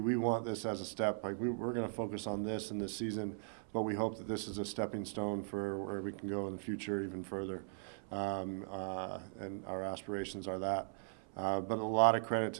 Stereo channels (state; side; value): silent; left; 52 dB below the other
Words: want this as a step. Like we're going to focus on this in this season, but we hope that this is a stepping stone for where we can go in the future even further. And our aspirations are that. But a lot of credit